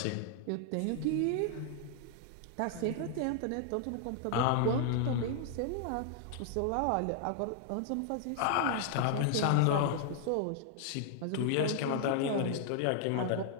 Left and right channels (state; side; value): different; both; correlation -0.01